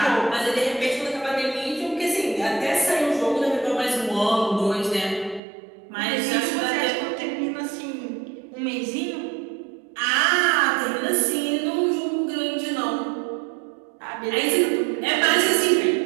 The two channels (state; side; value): drops out; left; at 5.4 s